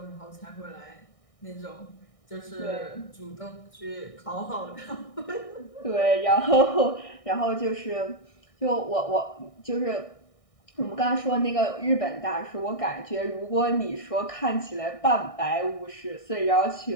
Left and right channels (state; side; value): late; right; 1.6 ms